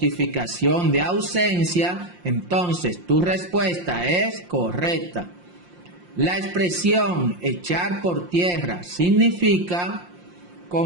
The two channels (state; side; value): late; left; 5.7 ms